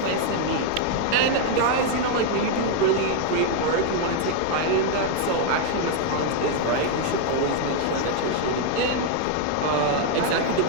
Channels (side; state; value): both; different; correlation 0.01